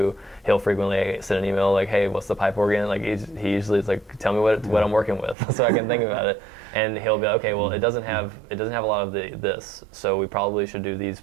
He'll frequently send an email like, "Hey, what's the pipe organ?" Like, he usually is like, "Tell me what I'm working with," so I can think about it. And he'll be like, "Okay, well, it doesn't have a lot of this, so we probably should do these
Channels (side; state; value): left; drops out; at 5.4 s